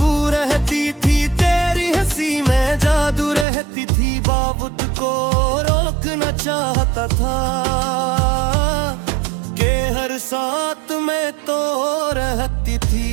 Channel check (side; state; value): left; drops out; at 3.5 s